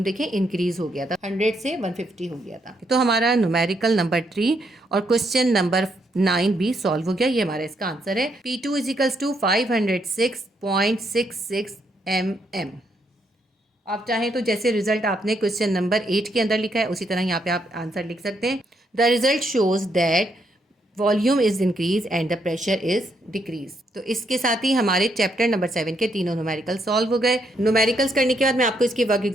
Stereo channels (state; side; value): normal; both; correlation 0.76